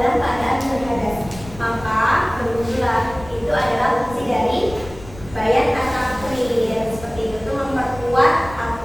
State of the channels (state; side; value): noise; left; rumble, 17 dB below the sound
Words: keadaan berhadas. Maka berwudulah. Itu adalah fungsi dari bayan at-takrir. Seperti itu memperkuat